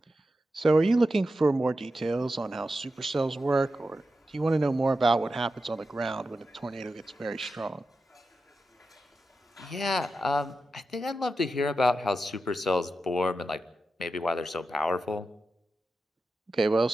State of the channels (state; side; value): normal; both; correlation 0.90